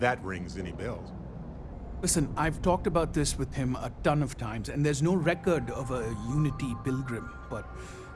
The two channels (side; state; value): both; identical; correlation 1.00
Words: rings any bells. Listen, I've talked about this with him a ton of times, and there's no record of a Unity Pilgrim. But